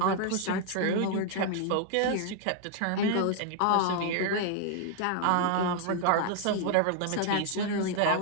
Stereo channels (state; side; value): different; both; correlation 0.00